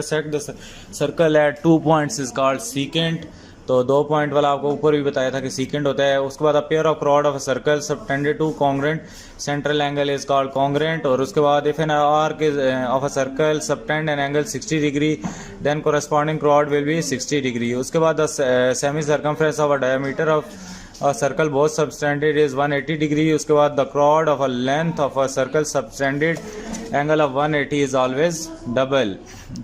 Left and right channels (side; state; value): both; identical; correlation 1.00